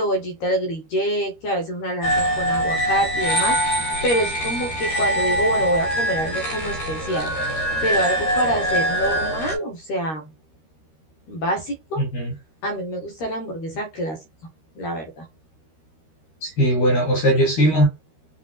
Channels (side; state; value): right; late; 13 ms